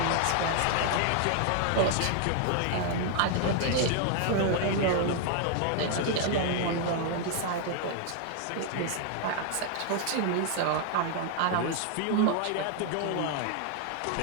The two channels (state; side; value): different; both; correlation 0.00